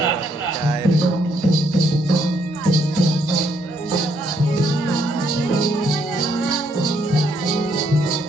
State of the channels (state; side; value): normal; both; correlation 0.72